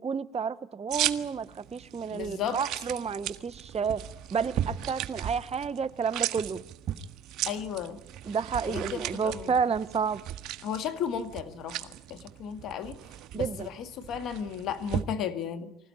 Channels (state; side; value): quieter; left; 3.7 dB